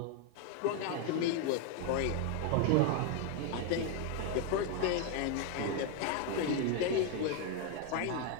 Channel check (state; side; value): different; both; correlation 0.01